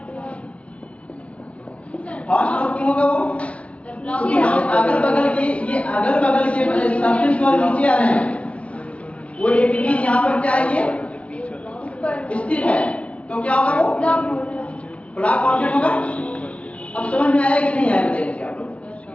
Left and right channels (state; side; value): late; right; 0.063 ms